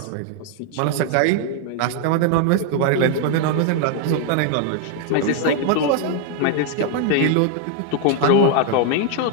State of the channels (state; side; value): different; both; correlation 0.00